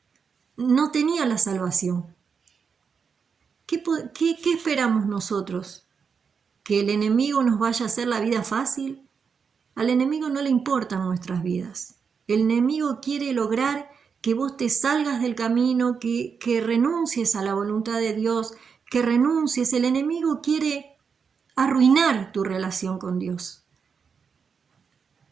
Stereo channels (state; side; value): quieter; left; 6.0 dB